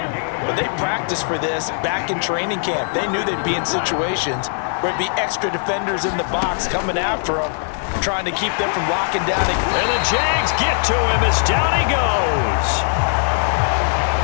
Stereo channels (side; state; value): right; silent; 66 dB below the other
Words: they practiced for this back in training camp. They knew they'd be in situations where it'd be extra defenders in the box coming after them, trying to keep them from locking down. And the Jags get to him as down he goes.